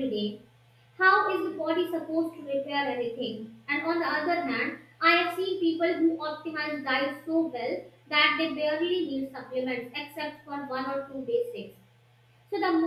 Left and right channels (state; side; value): identical; both; correlation 1.00